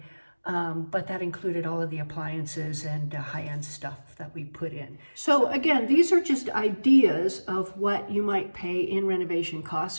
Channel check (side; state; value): both; inverted; correlation -1.00